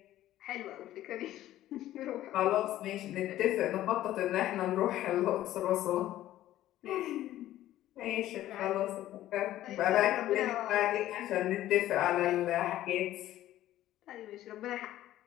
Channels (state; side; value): quieter; right; 13.8 dB